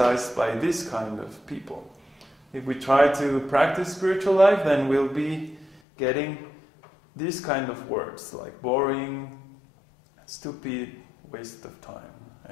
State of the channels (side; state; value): right; drops out; at 5.8 s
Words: by this kind of people. If we try to practice spiritual life, then we'll be getting these kind of words like boring, stupid, waste of time.